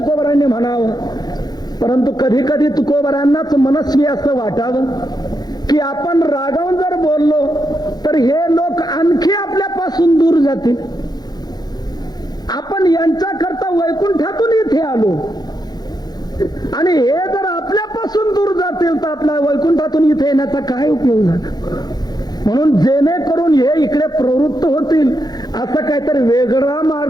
म्हणावं. परंतु कधी कधी तुकोबारांनाच मनस्वी असं वाटावं की आपण रागावून जर बोललो तर हे लोक आणखी आपल्यापासून दूर जातील. आपण यांच्याकरता वैकुंठातून इथे आलो आणि हे जर आपल्यापासून दूर जातील तर आपल्या वैकुंठातून इथे येण्याचा काय उपयोग झाला. म्हणून जेणेकरून हे इकडे प्रवृत्त होतील असं काहीतरी वेगळा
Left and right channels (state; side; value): late; right; 0.19 ms